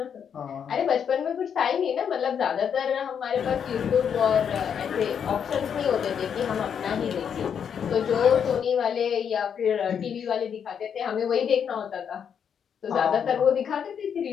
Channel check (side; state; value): right; quieter; 7.7 dB